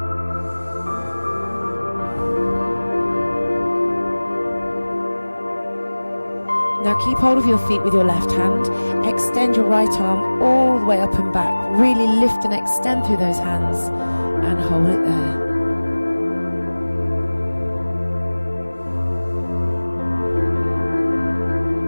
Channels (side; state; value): both; inverted; correlation -1.00